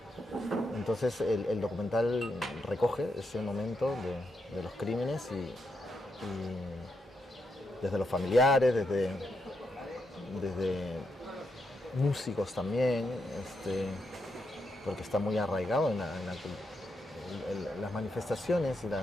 Entonces el documental recoge ese momento de los crímenes y desde los familiares, desde músicos también, porque está muy arraigado en las manifestaciones y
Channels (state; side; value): normal; both; correlation 0.82